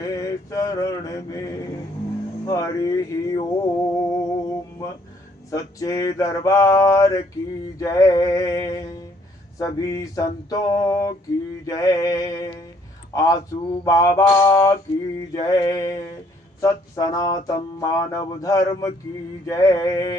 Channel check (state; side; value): normal; both; correlation 0.65